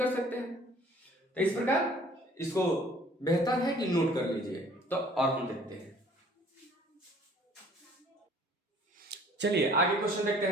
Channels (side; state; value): both; normal; correlation 0.54